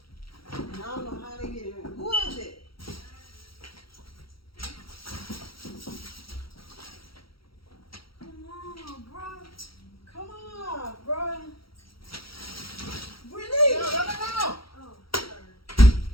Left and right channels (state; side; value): late; right; 0.75 ms